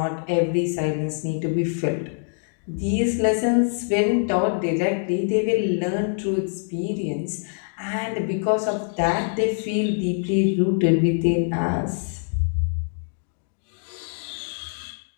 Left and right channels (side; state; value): right; silent; digital silence